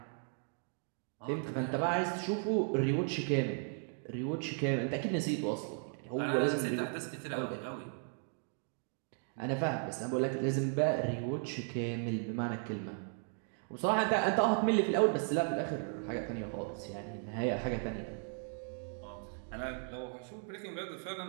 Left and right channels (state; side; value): silent; left; 54 dB below the other